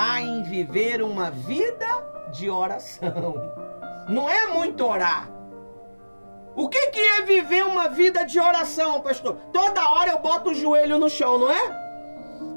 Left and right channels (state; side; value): inverted; both; correlation -1.00